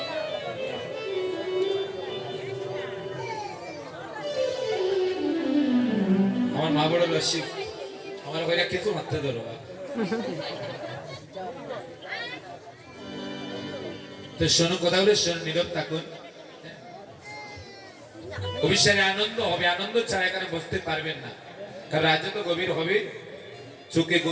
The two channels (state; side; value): identical; both; correlation 1.00